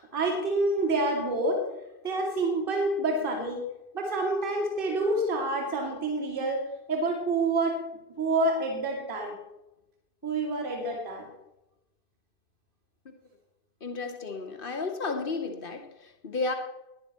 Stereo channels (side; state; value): right; late; 2.5 ms